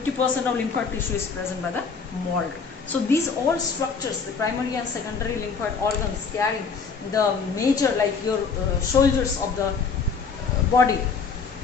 of lymphatic tissue is present by the MALT. So these all structures, the primary and secondary lymphatic organs carrying the major, like your soldiers of the body,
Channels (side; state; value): right; quieter; 5.3 dB